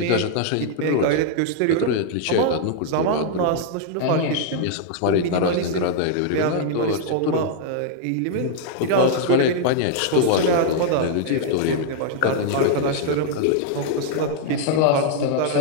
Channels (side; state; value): both; different; correlation 0.00